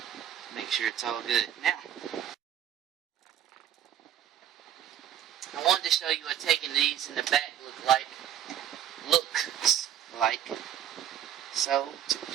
Make sure it's all good. Now, I wanted to show you what taking these in the back looks like. So, to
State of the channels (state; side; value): quieter; left; 10.3 dB